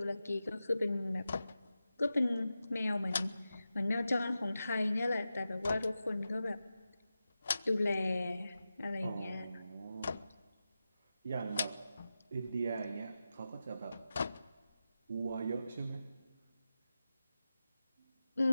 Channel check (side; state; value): both; inverted; correlation -0.92